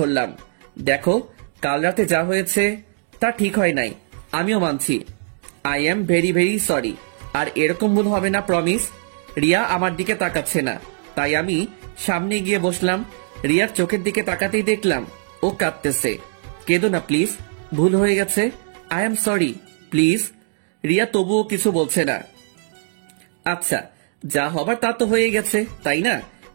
দেখো, কাল রাতে যা হয়েছে তা ঠিক হয় নাই, আমিও মানছি। I am very very sorry. আর এরকম ভুল হবে না, প্রমিস। রিয়া আমার দিকে তাকাচ্ছে না, তাই আমি সামনে গিয়ে বসলাম। রিয়ার চোখের দিকে তাকাতেই দেখলাম ও কাঁদতেছে। কেঁদো না প্লিজ, ভুল হয়ে গেছে, I am sorry please. Riya তবুও কিছু বলছে না। আচ্ছা, যা হবার তা তো হয়ে গেছে, তাই না?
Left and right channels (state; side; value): silent; left; digital silence